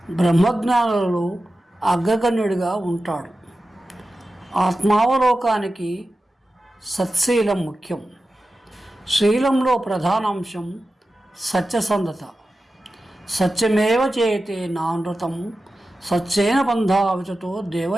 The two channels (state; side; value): normal; both; correlation 0.93